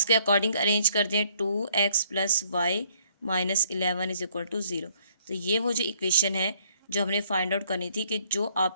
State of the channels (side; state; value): both; inverted; correlation -0.66